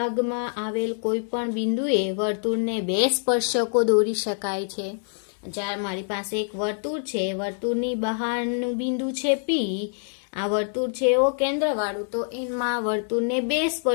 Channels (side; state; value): right; silent; digital silence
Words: આવેલ કોઈ પણ બિંદુએ વર્તુળને બે સ્પર્શકો દોરી શકાય છે. જ્યારે મારી પાસે એક વર્તુળ છે, વર્તુળની બહારનું બિંદુ છે P, આ વર્તુળ છે એવો કેન્દ્રવાળું, તો એમાં વર્તુળને બે